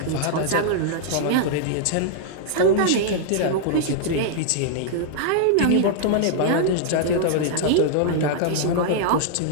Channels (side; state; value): both; different; correlation -0.01